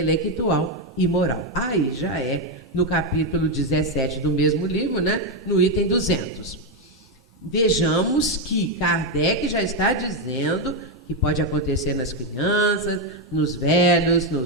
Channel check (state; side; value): normal; both; correlation 0.05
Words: e moral. Aí já é no capítulo 17 do mesmo livro, né? No item 200. Vejamos que Kardec já está dizendo que pode acontecer nas crianças, nos velhos,